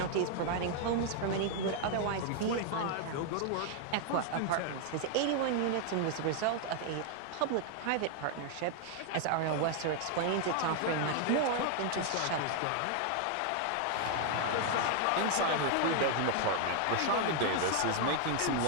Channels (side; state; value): both; different; correlation 0.00